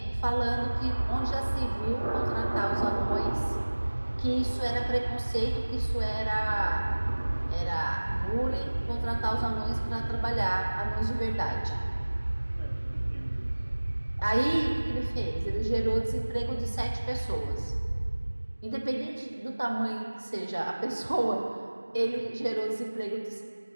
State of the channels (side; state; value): both; inverted; correlation -1.00